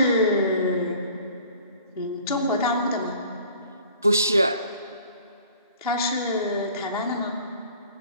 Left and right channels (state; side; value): inverted; both; correlation -0.50